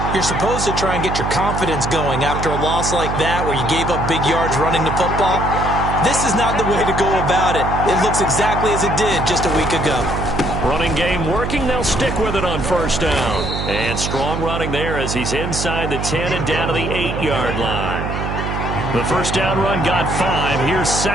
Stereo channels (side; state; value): right; noise; hum, 3 dB below the sound